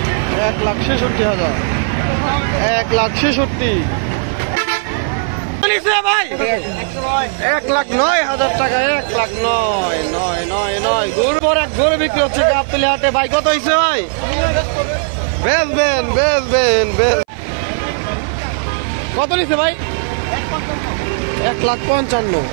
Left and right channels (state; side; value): silent; left; 61 dB below the other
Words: 1,66,000 ভাই। 1,09,000 টাকা। 1,09,999 গরু পর এক গরু বিক্রি হচ্ছে গাবতলী হাটে। ভাই কত হয়েছে ভাই? বেচবেন? কত নিচ্ছে ভাই? 1,55,000।